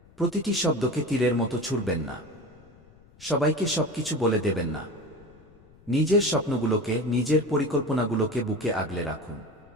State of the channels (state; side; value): noise; left; rumble, 26 dB below the sound